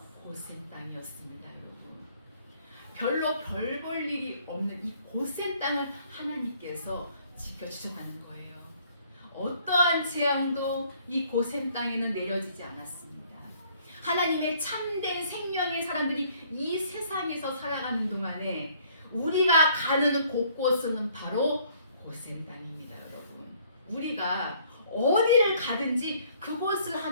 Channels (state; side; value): inverted; both; correlation -0.61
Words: 고센 땅이었습니다. 여러분 별로 별 볼 일이 없는 이 고센 땅을 하나님께서 지켜주셨다는 거예요. 어떠한 재앙도 이 고센 땅에는 내려지지 않았습니다. 하나님의 참된 생명의 사람들이 이 세상에서 살아가는 동안에 우리가 가는 곳곳은 바로 고센 땅입니다. 여러분 우리가 어디를 가든지 그곳을